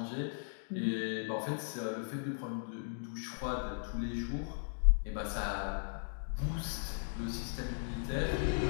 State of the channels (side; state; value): right; silent; digital silence